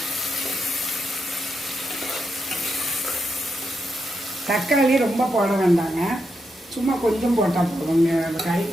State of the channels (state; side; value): normal; both; correlation 0.83